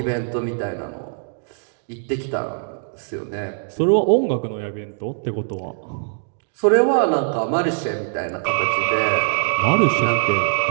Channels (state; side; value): silent; left; 64 dB below the other